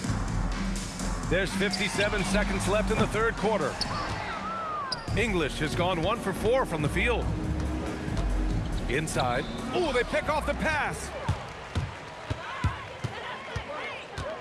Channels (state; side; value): identical; both; correlation 1.00